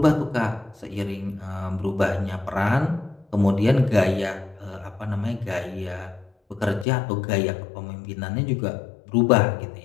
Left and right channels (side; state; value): right; drops out; at 6.9 s